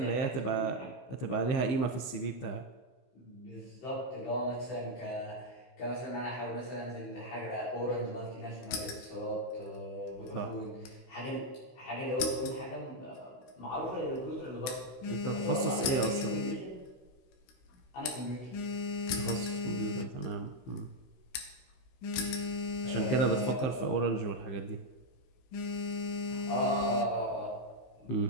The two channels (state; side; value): late; right; 16 ms